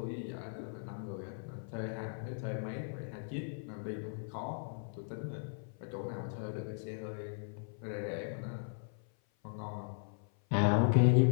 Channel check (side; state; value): right; silent; 53 dB below the other